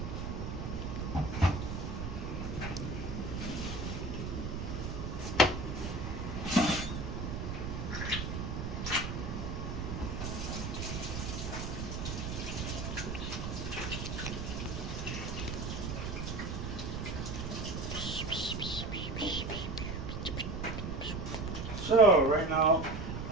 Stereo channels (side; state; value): right; noise; rumble, 4 dB below the sound